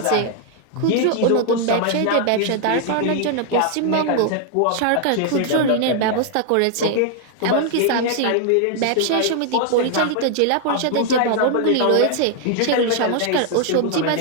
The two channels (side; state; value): both; different; correlation 0.00